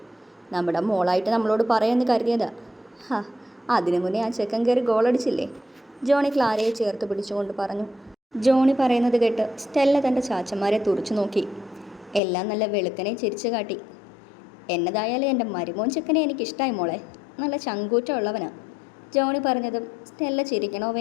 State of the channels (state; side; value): drops out; right; at 12.2 s